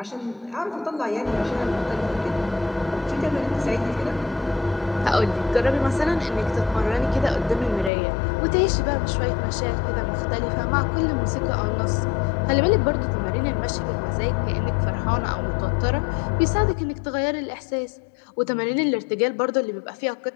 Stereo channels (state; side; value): drops out; right; at 7.9 s